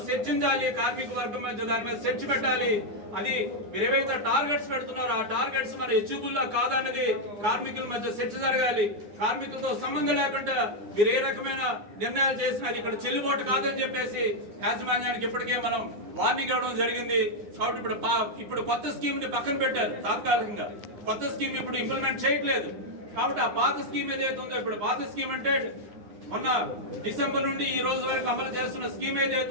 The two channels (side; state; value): left; late; 9.7 ms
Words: చర్చించాలి, కార్మిక వర్గం మధ్య దాని మీద చర్చ పెట్టాలి. అది మీరు ఏవైతే టార్గెట్స్ పెడుతున్నారో ఆ టార్గెట్స్ మన ఎచ్యూబుల్లా కాదన్నది కార్మికుల మధ్య చర్చ జరగాలి. కార్మికులతో సంబంధం లేకుండా మీరు ఏ రకమైన నిర్ణయాలు చేసినా అది ఇక్కడ చెల్లుబాటు కాదని చెప్పేసి యాజమాన్యానికి ఇప్పటికే మనం వార్నింగ్ ఇవ్వడం జరిగింది. కాబట్టి ఇప్పుడు కొత్త స్కీమ్ ని పక్కన పెట్టారు. తాత్కాలికంగా కొత్త స్కీమ్ ఇప్పుడు ఇంప్లిమెంట్ చేయట్లేదు. కాబట్టి ఆ పాత స్కీమ్ ఏదైతే ఉందో, ఇప్పుడు పాత స్కీమ్ అంటే మొన్న డిసెంబర్ నుండి ఈ రోజు వరకు అమలు చేస్తున్న స్కీమ్ ఏదైతే